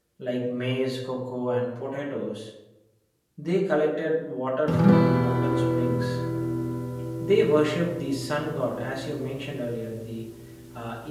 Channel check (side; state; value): both; identical; correlation 1.00